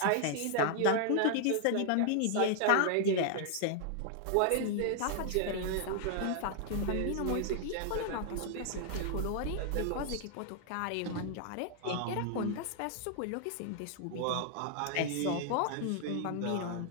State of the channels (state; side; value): different; both; correlation 0.00